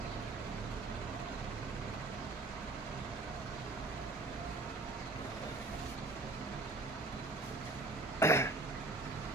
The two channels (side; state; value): left; quieter; 3.0 dB